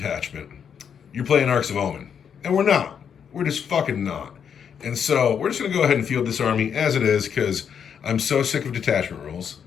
you're playing Arcs of Omen. And we're not. We're just fucking not. And so we're just going to go ahead and field this army as it is, because I'm so sick of detachment rules.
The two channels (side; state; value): right; quieter; 7.6 dB